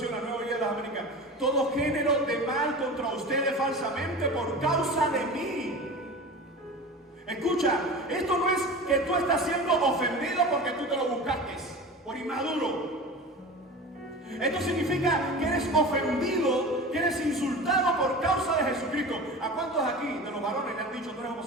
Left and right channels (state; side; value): normal; both; correlation 0.33